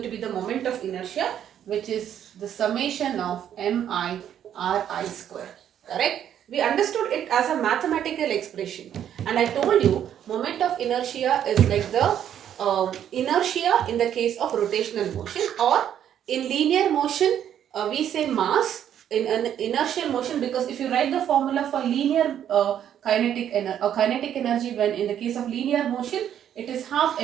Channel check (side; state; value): left; quieter; 9.9 dB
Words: to be the moment of inertia, which is the summation of mi ri square, correct? We understood it as a mathematical expression, and I told you moment of inertia is like the inertia in the case of rotational motion, or in linear motion we say mass in an inertial motion, because if you write the formula for linear kinetic energy, when in the case of linear motion it is half